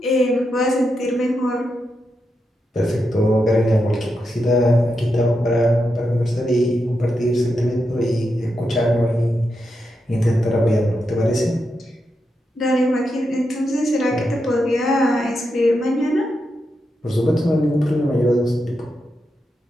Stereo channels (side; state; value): both; normal; correlation 0.86